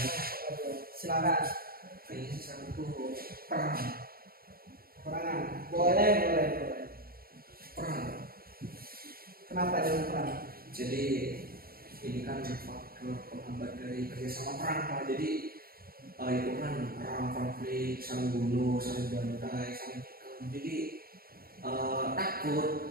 Silakan. kayaknya satu tuh perang. Perangan. Boleh. Perang. Kenapa jangan perang? Jadi ini kan faktor penghambat dari kerjasama perang Pak. Jadi itu kan perang, konflik, saling bunuh, saling bantai, saling tikam. Jadi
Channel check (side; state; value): left; late; 0.43 ms